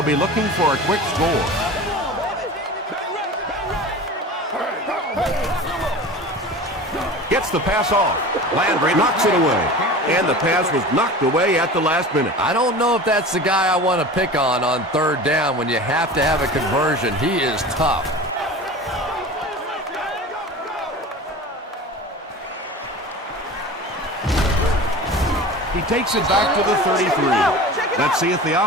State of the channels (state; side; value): normal; both; correlation 0.36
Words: be looking for a quick score. Gets the pass off. Landry knocks it away. And the pass was knocked away at the last minute. I don't know if that's the guy I want to pick on 3rd down when you have to have a conversion. He is tough. He takes it back to the 33. Let's see if the